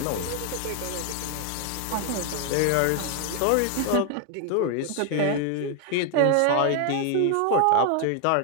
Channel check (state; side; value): different; both; correlation 0.00